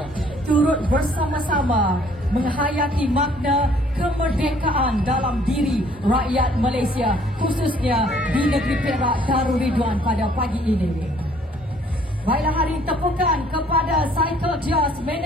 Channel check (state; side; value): normal; both; correlation 0.60